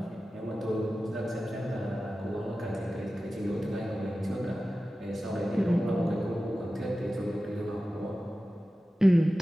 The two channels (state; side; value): normal; both; correlation 0.95